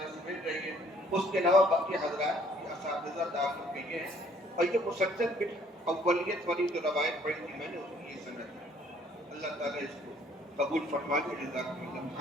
से मिल रही है, उसके अलावा बाकी हजरात असातिज़ा दाखिल किए हैं। और ये मुसलसल बिल अव्वलियत वाली जो रवायत पढ़ी थी मैंने, उसकी ये सनद है। अल्लाह ताला इसको कबूल फरमा ले। जज़ाकुमुल्लाह।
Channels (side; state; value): both; normal; correlation 0.60